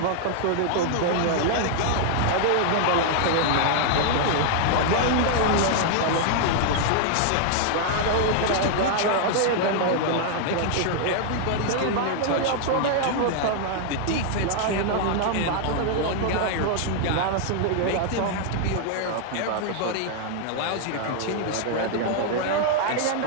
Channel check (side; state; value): both; different; correlation 0.00